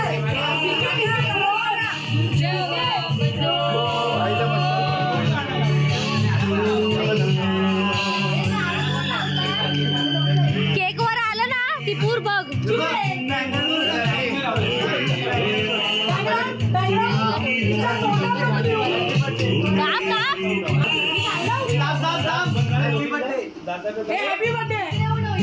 केक वर आलं ना ती पूर बघ.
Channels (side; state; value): both; identical; correlation 1.00